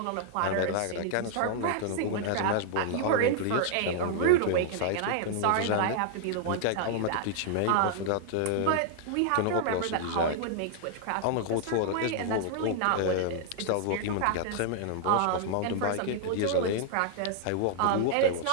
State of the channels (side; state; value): both; different; correlation -0.01